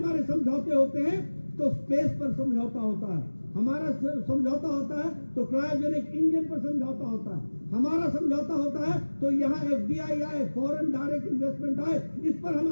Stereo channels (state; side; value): inverted; both; correlation -1.00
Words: समझौते होते हैं तो स्पेस पर समझौता होता है, हमारा समझौता होता है तो क्रायोजेनिक इंजन पर समझौता होता है, हमारा समझौता होता है तो यहाँ FDI आए, फॉरेन डायरेक्ट इन्वेस्टमेंट आए, इस पर